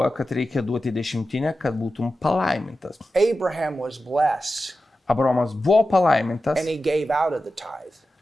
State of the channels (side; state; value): both; normal; correlation 0.92